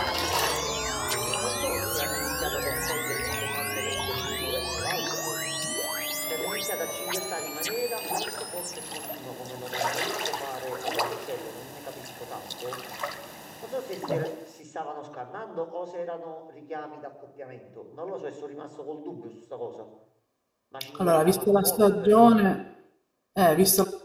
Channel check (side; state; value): both; identical; correlation 1.00